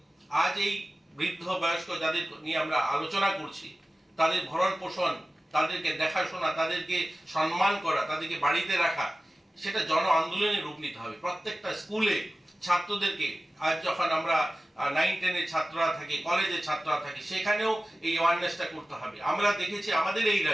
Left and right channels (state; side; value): normal; both; correlation 0.96